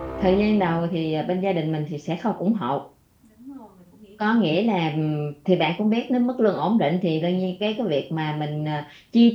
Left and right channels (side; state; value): both; identical; correlation 1.00